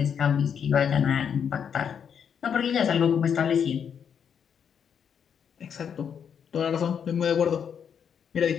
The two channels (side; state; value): right; quieter; 7.6 dB